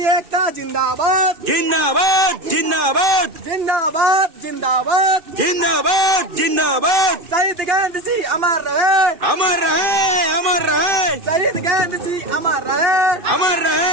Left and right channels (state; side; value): late; left; 2.6 ms